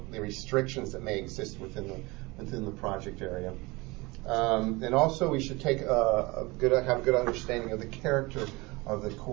the restrictions that may exist within the project area. And also, we should take have a good understanding of the character of the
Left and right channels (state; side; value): quieter; left; 23.7 dB